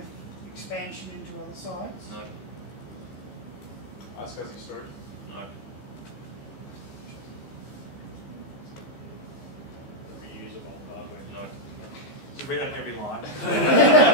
expansion into other sites? No. iSCSI storage? No. Reusable hardware? No. Just read out every line.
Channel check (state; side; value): late; right; 15 ms